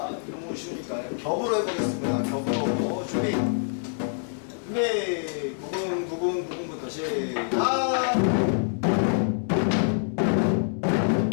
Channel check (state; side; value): silent; right; digital silence